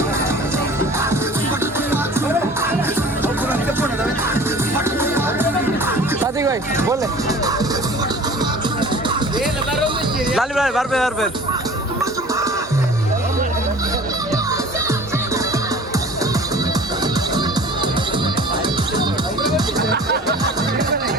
प्रतीक भाई बोल लाली भाई बार पे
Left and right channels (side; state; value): both; normal; correlation 0.44